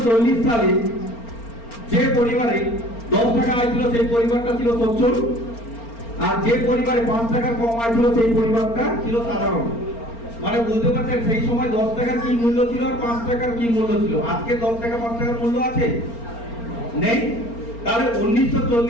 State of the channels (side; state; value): right; late; 4.4 ms